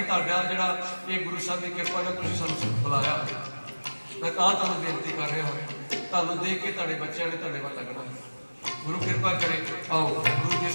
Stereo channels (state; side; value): inverted; both; correlation -1.00